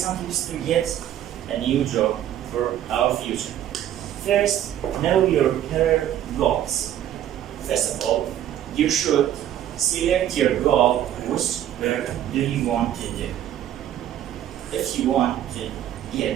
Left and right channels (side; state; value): left; quieter; 11.5 dB